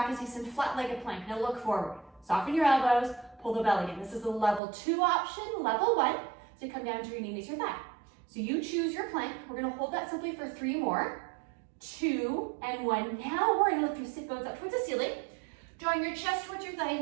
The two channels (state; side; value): drops out; left; at 4.6 s